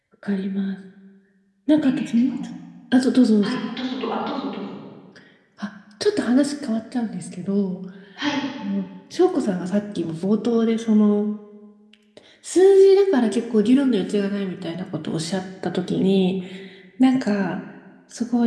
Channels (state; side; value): identical; both; correlation 1.00